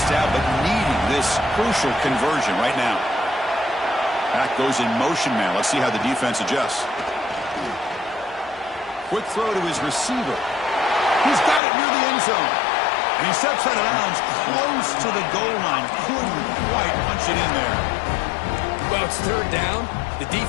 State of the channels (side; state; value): right; drops out; at 11.6 s